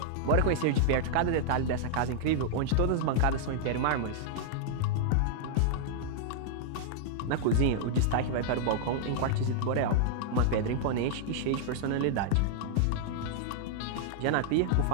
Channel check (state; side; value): different; both; correlation -0.01